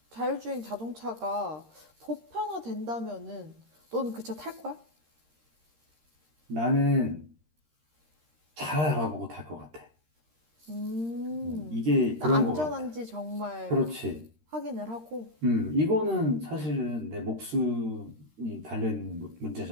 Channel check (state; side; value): late; left; 13 ms